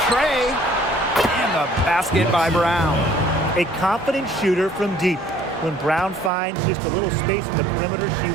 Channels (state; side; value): drops out; left; at 6.3 s